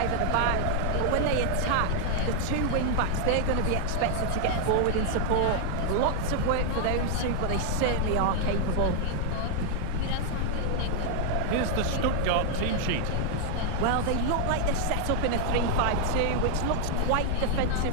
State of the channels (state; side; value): different; both; correlation 0.00